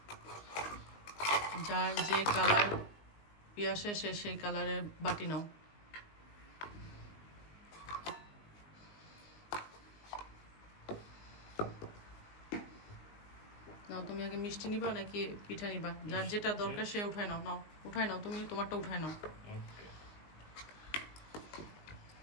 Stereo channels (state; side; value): late; right; 19 ms